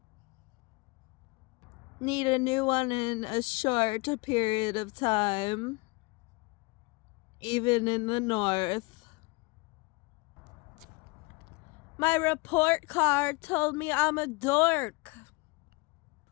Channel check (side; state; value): right; quieter; 26.5 dB